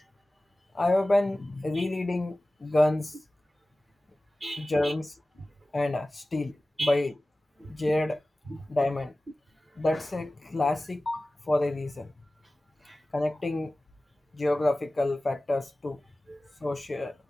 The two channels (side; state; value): both; normal; correlation 0.97